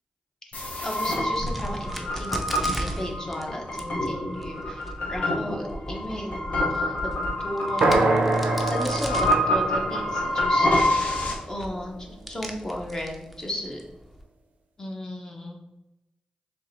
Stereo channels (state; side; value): normal; both; correlation 0.73